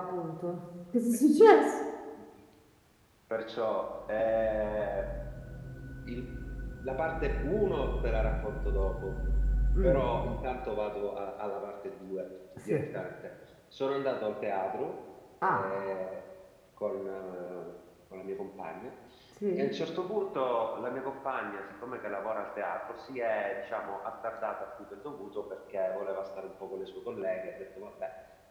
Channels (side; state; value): both; identical; correlation 1.00